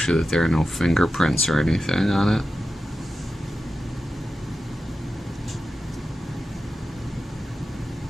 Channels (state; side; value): normal; both; correlation 0.92